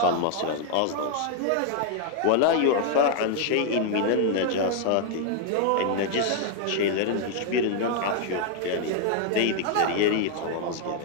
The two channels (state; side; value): different; both; correlation 0.00